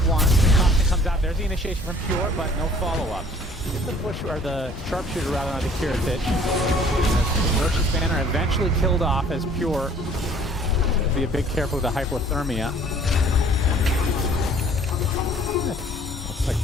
1. Thompson comes out. There's the initiation from Pure, but no follow-up. Get the push, or the sharpshooter rather, on the TridentZ. Roche's banner eventually killed off as Pure Be a bit careful with the hypothermia. Looks like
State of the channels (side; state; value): both; normal; correlation 0.54